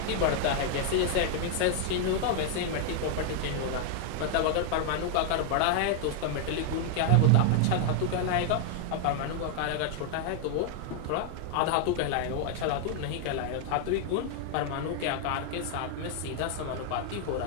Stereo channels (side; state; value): both; different; correlation 0.00